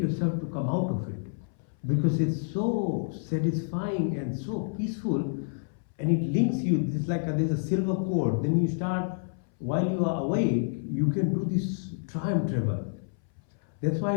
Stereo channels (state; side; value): silent; right; 59 dB below the other